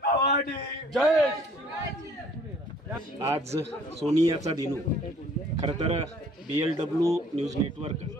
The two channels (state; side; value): normal; both; correlation 0.56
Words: भवानी जय। आज सोनियाचा दिनू खरं तर BLW न्यूज नेटवर्क